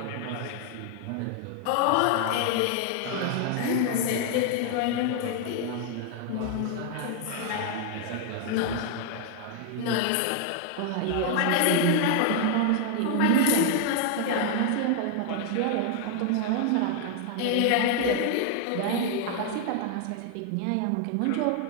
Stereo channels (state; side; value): different; both; correlation 0.00